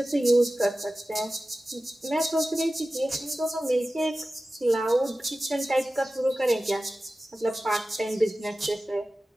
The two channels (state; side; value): normal; both; correlation 0.95